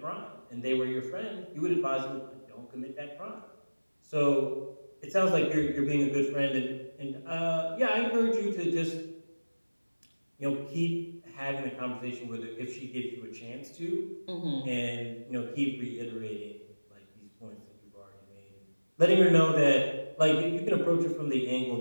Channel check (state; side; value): inverted; both; correlation -1.00